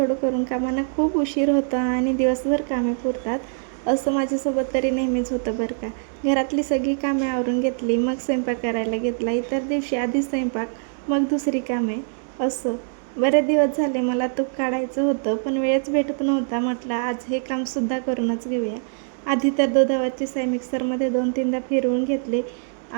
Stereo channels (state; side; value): silent; left; digital silence